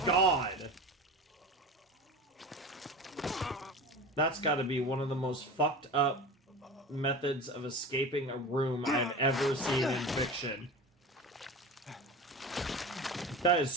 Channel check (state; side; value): normal; both; correlation 0.31